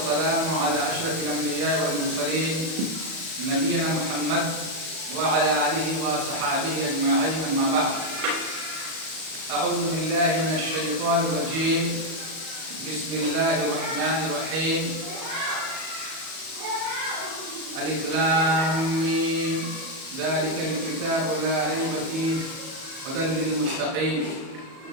على أشرف الأنبياء والمرسلين نبينا محمد وعلى آله وصحابه أجمعين أما بعد أعوذ بالله من الشيطان الرجيم بسم الله الرحمن الرحيم ألف لام ميم ذلك الكتاب لا ريب فيه هدى للمتقين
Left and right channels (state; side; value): late; left; 37 ms